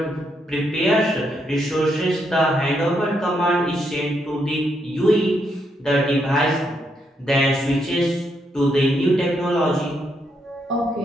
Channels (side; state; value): both; normal; correlation 0.78